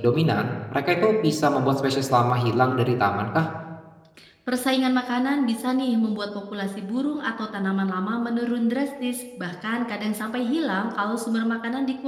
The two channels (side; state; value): both; identical; correlation 1.00